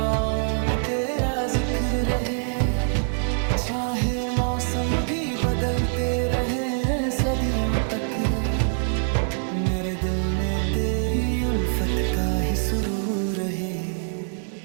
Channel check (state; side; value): silent; left; 62 dB below the other